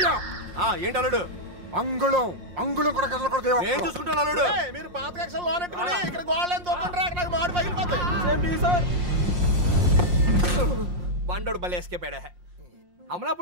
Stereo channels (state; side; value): late; left; 5.6 ms